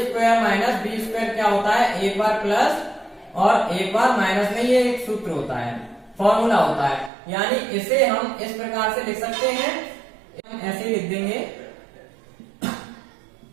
- b² क्या होता है, एक बार प्लस और एक बार माइनस में, ये एक सूत्र होता है, फॉर्मूला होता है। यानी इसे हम इस प्रकार से लिख सकते हैं, हम ऐसे लिख देंगे,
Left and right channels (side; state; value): left; drops out; at 7.1 s